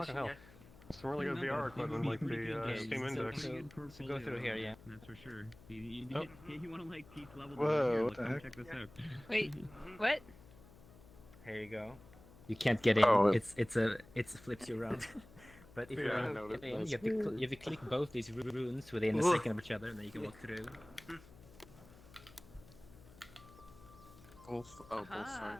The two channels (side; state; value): left; noise; hum, 22 dB below the sound